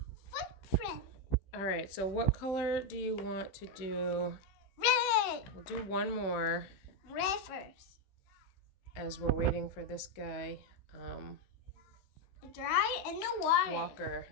Footprint. All right, so what color do you want to do? Red. We'll do one more Red first. as we're waiting for this guy, Dry in the water. Walker,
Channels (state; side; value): late; right; 15 ms